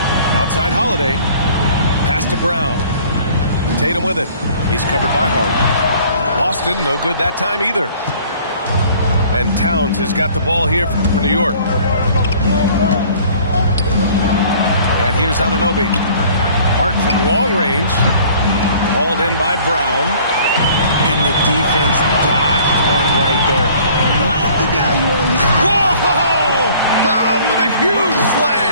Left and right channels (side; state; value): both; inverted; correlation -0.52